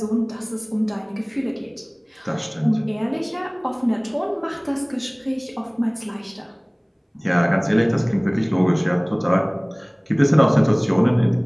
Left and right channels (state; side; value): identical; both; correlation 1.00